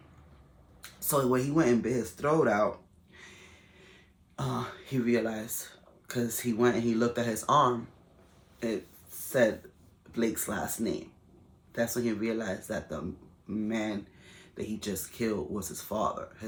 So when he went and bit his throat out, he realized, because he went and he looked at his arm, it said Blake's last name. That's when he realized that the man that he just killed was his father.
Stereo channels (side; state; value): both; identical; correlation 1.00